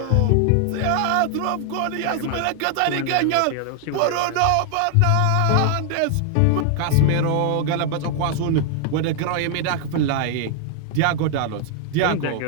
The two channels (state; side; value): different; both; correlation 0.00